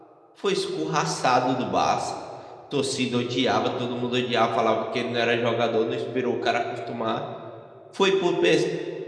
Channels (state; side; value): identical; both; correlation 1.00